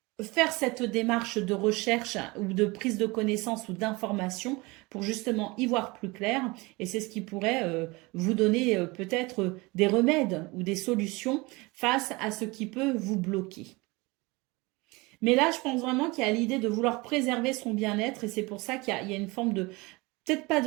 faire cette démarche de recherche ou de prise de connaissance ou d'information pour justement y voir plus clair. Et c'est ce qui pourrait vous donner peut-être des remèdes ou des solutions face à ce qui peut vous bloquer. Mais là, je pense vraiment qu'il y a l'idée de vouloir préserver son bien-être et c'est pour ça qu'il y a une forme de, peut-être pas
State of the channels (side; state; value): left; quieter; 24.3 dB